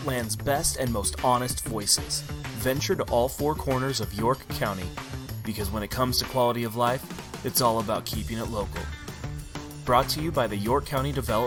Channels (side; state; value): both; identical; correlation 1.00